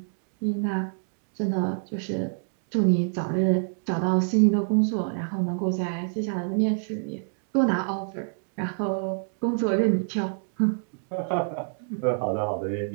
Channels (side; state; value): left; silent; digital silence